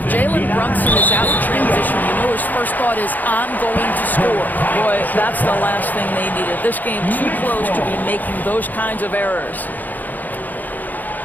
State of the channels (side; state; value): right; late; 0.084 ms